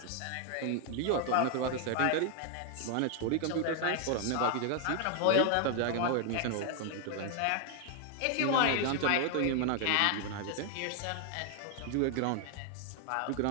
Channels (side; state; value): both; different; correlation 0.00